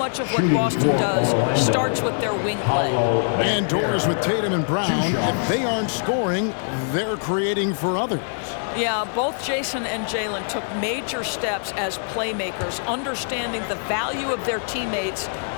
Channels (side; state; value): right; silent; digital silence